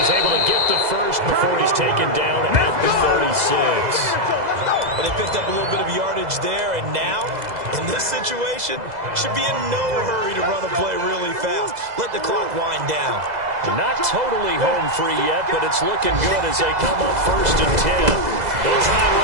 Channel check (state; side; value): late; left; 2.0 ms